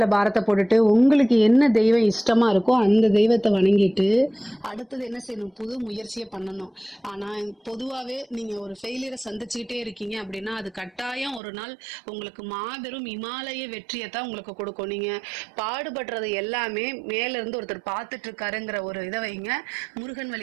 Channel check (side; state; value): left; drops out; at 11.4 s